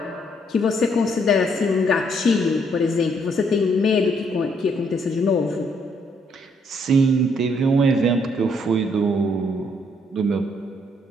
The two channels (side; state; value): both; normal; correlation 0.70